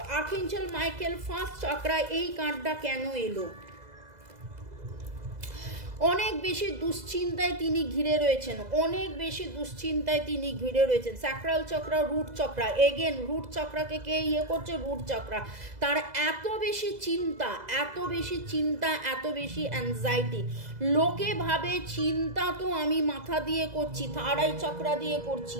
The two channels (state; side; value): late; left; 2.0 ms